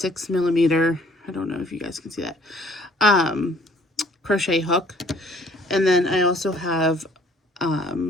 millimeter, I don't know if you guys can see that, crochet hook. And then I also have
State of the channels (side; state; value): both; normal; correlation 0.59